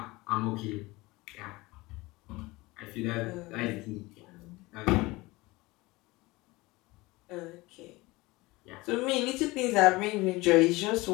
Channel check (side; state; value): right; quieter; 21.7 dB